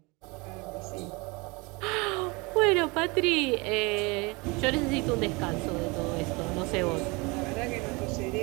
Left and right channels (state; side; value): quieter; left; 26.7 dB